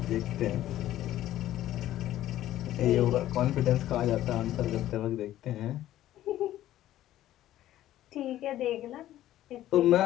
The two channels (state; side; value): quieter; right; 13.5 dB